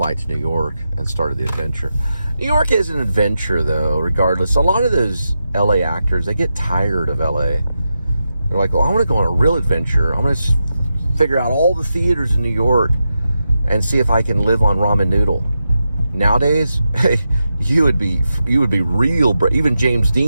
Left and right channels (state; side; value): inverted; both; correlation -0.88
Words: to New York and started the adventure. New York is an adventure, though, regardless. A lot of those LA actors, they get tired of LA. They're like, well, I want to go on a real adventure. I'm going to figure out all the theaters in New York and see if I can live on ramen noodle. Nowadays, hey, you would be real. Even James